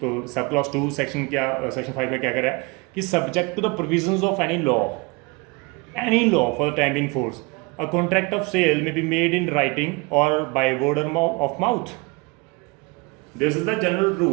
तो सब क्लॉज 2 सेक्शन 5 में क्या कर रहा है कि subject to the provisions of any law for the time in force, a contract of sale may be made in writing और by word of mouth. This is the general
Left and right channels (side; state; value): left; quieter; 27.3 dB